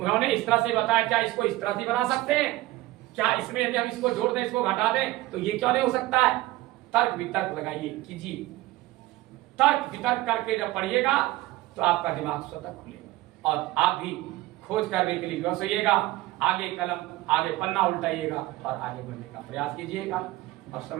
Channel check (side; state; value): left; quieter; 17.6 dB